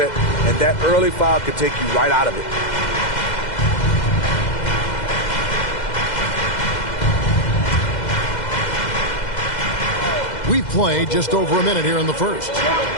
and that early foul could take you right out of it. We've played just over a minute here in the first.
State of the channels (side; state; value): right; late; 2.0 ms